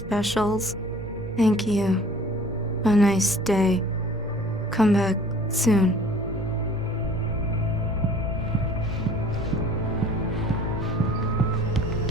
Thank you. A nice day. Come back soon.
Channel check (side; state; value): both; normal; correlation 0.50